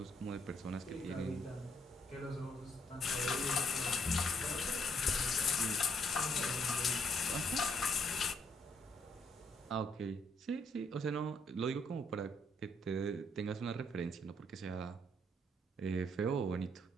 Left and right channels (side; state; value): both; normal; correlation 0.71